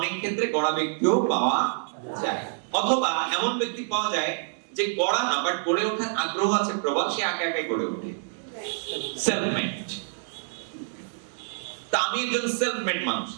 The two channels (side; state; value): left; silent; 60 dB below the other